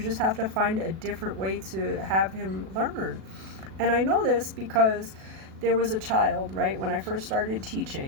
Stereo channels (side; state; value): left; late; 37 ms